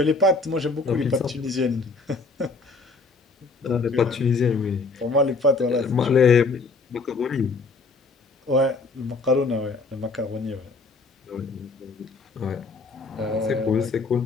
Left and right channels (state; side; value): quieter; right; 3.9 dB